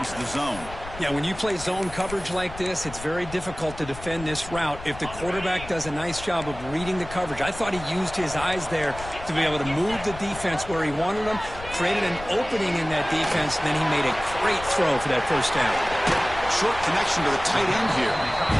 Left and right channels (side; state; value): left; noise; rumble, 14 dB below the sound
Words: the zone. Yeah, when you play zone coverage like this, it's very difficult to defend this route if the quarterback does a nice job of reading the coverage. I thought he used his eyes there to be able to move the defense where he wanted them, created an opening in that defense, and then he made a great throw for that first down. Short connection to the tight end here.